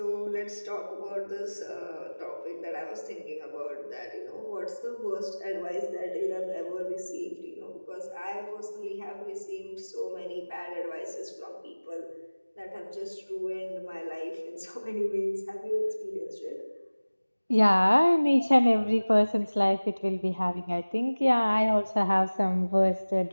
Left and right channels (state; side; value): inverted; both; correlation -1.00